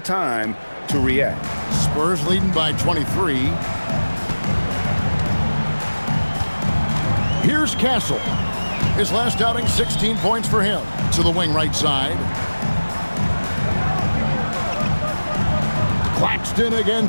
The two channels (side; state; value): both; inverted; correlation -1.00